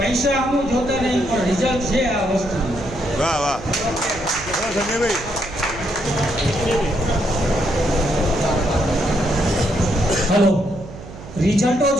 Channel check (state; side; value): noise; right; hum, 15 dB below the sound